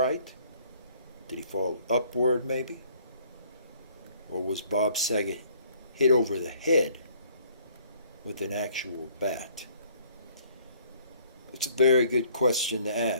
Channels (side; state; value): both; inverted; correlation -0.59